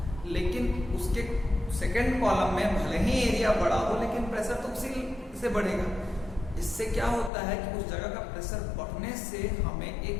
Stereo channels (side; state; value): right; drops out; at 7.3 s